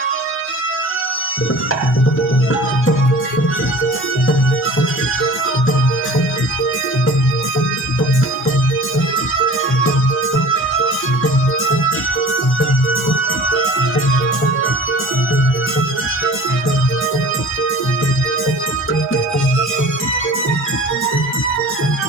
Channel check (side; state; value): both; normal; correlation 0.42